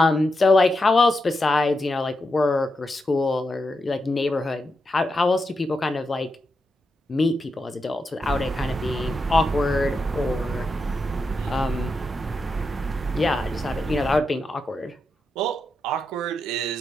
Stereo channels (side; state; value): both; normal; correlation 0.86